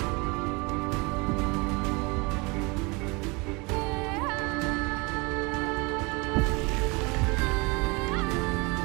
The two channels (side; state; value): left; quieter; 27.2 dB